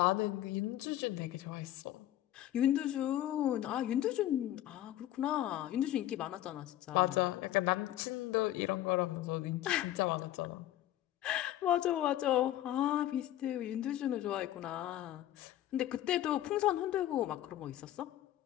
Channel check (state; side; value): quieter; right; 13.5 dB